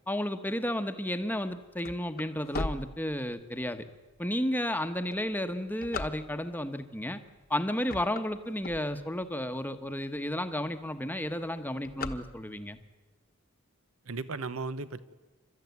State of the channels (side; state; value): both; normal; correlation 0.76